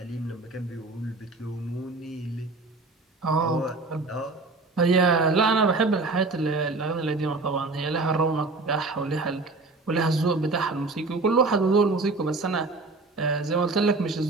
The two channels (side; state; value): left; quieter; 3.5 dB